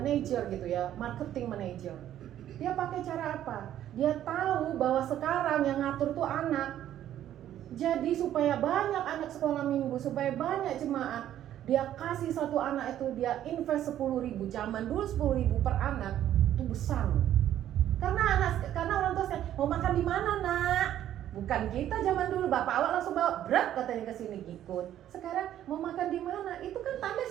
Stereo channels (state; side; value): quieter; left; 11.6 dB